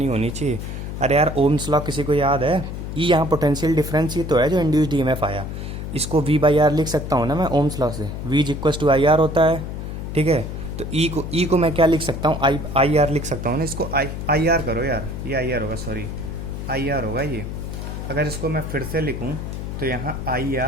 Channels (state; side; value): noise; left; hum, 6 dB below the sound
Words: होनी चाहिए। अरे यार ओम्स लॉ किसी को याद है, ई यहाँ पोटेंशियल डिफरेंस ही तो है जो इंड्यूस्ड EMF आया, इसको V/R लिख सकता हूँ ना मैं ओम्स लॉ से, V is equals to IR होता है, ठीक है। तो ई को मैं क्या लिख सकता हूँ, IR लिख सकता हूँ ना, इसको IR करो यार, ये IR होगा, सॉरी IR होगा ये। अगर इसको मैं फिर से लिखूँ तो यहाँ